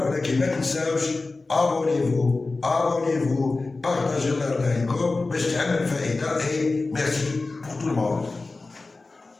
ولكن ما تنساوش abonnez-vous partagez la vidéo باش تعمل فائده. et merci pour tout le monde.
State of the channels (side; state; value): right; quieter; 3.5 dB